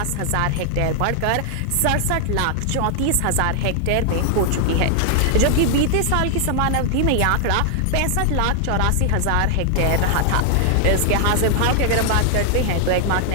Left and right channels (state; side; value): different; both; correlation 0.00